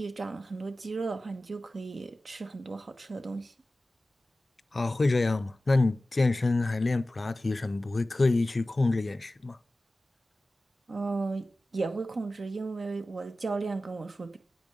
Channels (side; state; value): both; normal; correlation 0.96